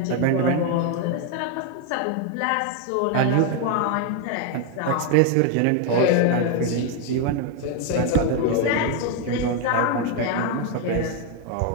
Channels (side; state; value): both; different; correlation 0.01